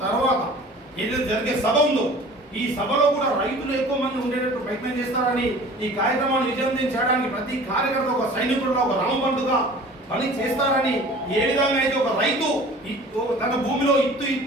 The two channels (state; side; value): normal; both; correlation 0.44